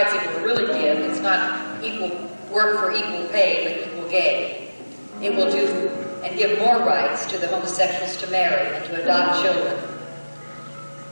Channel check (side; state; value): both; inverted; correlation -1.00